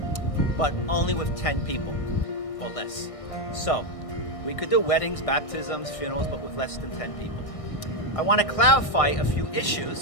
but only with 10 people or less. So we could do weddings, baptisms, funerals, but with less than 10 people. I want to clarify a few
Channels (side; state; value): right; late; 1.6 ms